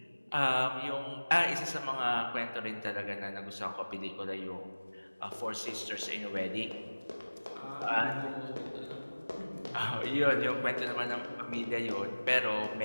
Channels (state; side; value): inverted; both; correlation -1.00